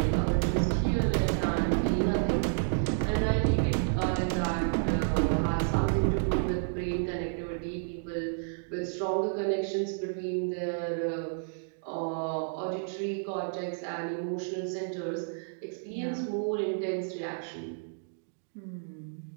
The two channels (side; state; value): left; silent; digital silence